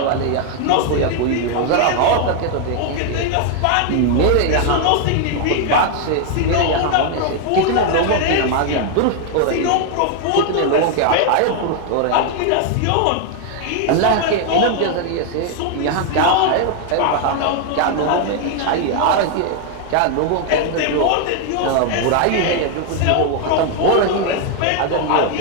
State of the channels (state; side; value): different; both; correlation 0.00